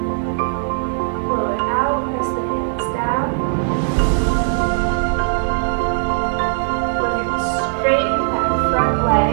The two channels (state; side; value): silent; left; digital silence